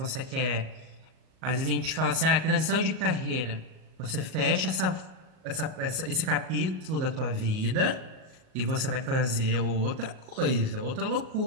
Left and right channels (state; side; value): late; left; 38 ms